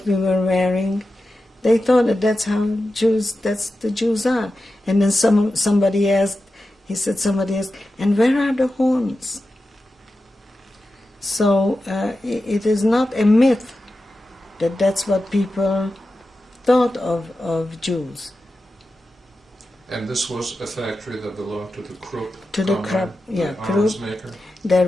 we were wearing. They thought that that's the Jews are. And then somebody asked, and where are the horns? So it is not a myth that that's what people thought of Jews. And this was a factory that belonged to the Krupp Krupp. arms maker? There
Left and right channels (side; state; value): both; normal; correlation 0.92